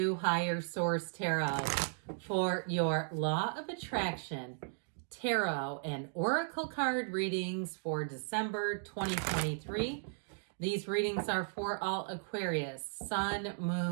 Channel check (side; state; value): left; silent; digital silence